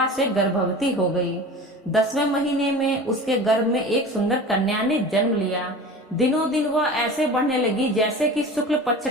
से गर्भवती हो गई। 10वें महीने में उसके गर्भ में एक सुंदर कन्या ने जन्म लिया। दिनों दिन वह ऐसे बढ़ने लगी जैसे कि शुक्ल पक्ष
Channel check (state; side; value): normal; both; correlation 0.36